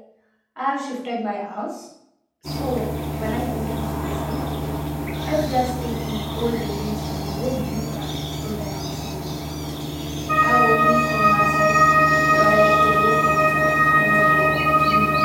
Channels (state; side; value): identical; both; correlation 1.00